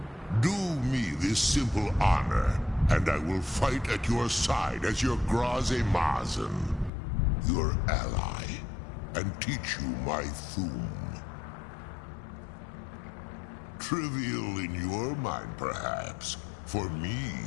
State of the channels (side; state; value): right; drops out; at 6.9 s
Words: Do me this simple honor, and I will fight at your side as your Graze Mazen, your ally, and teach you my Thum. Trivial in your mind, perhaps. For me,